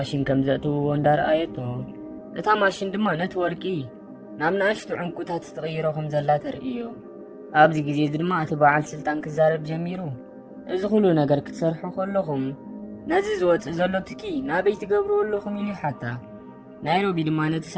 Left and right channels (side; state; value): both; identical; correlation 1.00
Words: ከም ዘእትውዎ እንዳረኣየቶ እታ ማሽን ድማ ነቲ ወርቂ ናብ ንኣሽቱ ዕንቁታት ትቕይሮ ከም ዘላ ተርእዮ። ኣብዚ ግዜ ድማ እቲ በዓል ስልጣን ክዛረብ ጀሚሩ እዚ ኩሉ ነገር ክትሰርሑ ከለኹም ነዚ ዝወፅእ ዘሎ ትኪ ናበይ ትገብርዎ ኣለኹም ኢሉ ሓታ። ናይሮቢ ድማ ነቲ